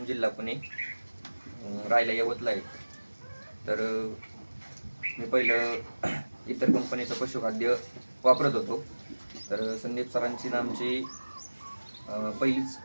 जिल्हा पुणे. राहायला यवतला आहे. तर मी पहिलं इतर कंपनीचं पशुखाद्य वापरत होतो. तर संदीप सरांची आमची पहिलीच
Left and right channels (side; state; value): both; inverted; correlation -1.00